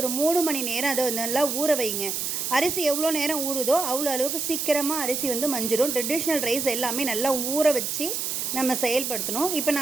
ஒரு 3 மணி நேரம் அதை நல்லா ஊற வைங்க. அரிசி எவ்வளோ நேரம் ஊறுதோ அவ்வளோ அளவுக்கு சீக்கிரமாக அரிசி மஞ்சிடும். ட்ரெடிஷ்னல் ரைஸ் எல்லாமே நல்லா ஊற வச்சு நம்ம செயல்படுத்தணும். இப்போ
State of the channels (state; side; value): noise; right; hiss, 2 dB below the sound